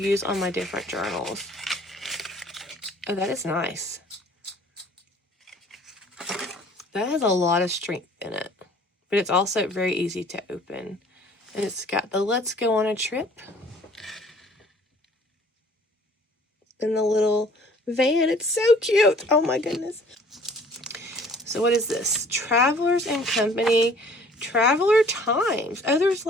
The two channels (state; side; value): normal; both; correlation 0.53